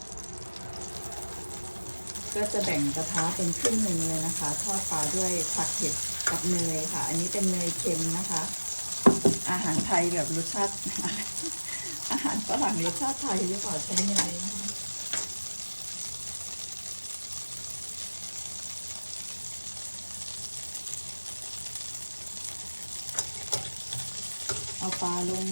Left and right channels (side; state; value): both; inverted; correlation -1.00